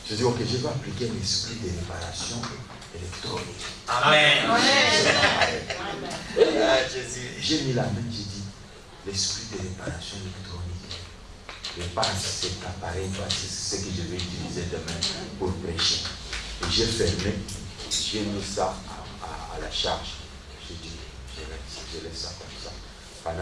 Je dis, ok, je vais appliquer l'esprit de réparation électronique. Amen. J'ai mis la main, j'ai dit, l'esprit de réparation électronique. Répare cet appareil, c'est ce que je vais utiliser demain pour prêcher. Et j'ai fermé, j'ai mis ça à la charge. J'ai dit, je laisse ça comme ça.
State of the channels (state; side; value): identical; both; correlation 1.00